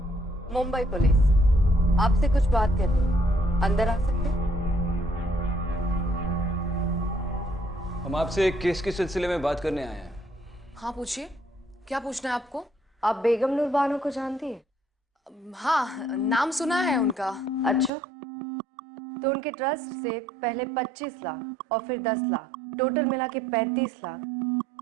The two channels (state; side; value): drops out; left; at 17.9 s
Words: मुंबई पुलिस, आपसे कुछ बात करनी है, अंदर आ सकते हैं? हम आपसे एक केस के सिलसिले में बात करने आए हैं। हाँ पूछिए, क्या पूछना है आपको? आप बेगम नूर बानो को जानती है? हाँ, नाम सुना है उनका। अच्छा, तो उनके ट्रस्ट से पहले 25 लाख और फिर 10 लाख, टोटल मिला के 35 लाख